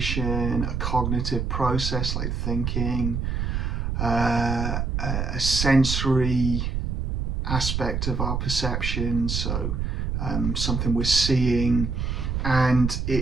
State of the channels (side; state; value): right; noise; rumble, 1 dB below the sound